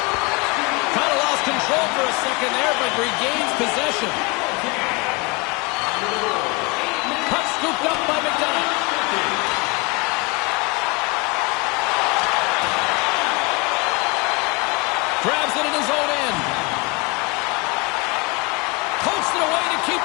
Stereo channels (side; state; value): right; quieter; 27.8 dB